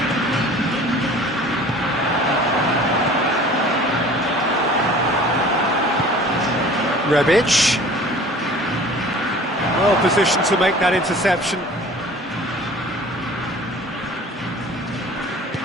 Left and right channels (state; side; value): normal; both; correlation 0.46